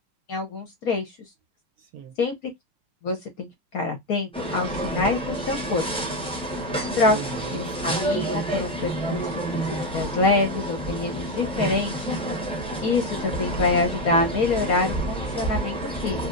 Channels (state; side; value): normal; both; correlation 0.09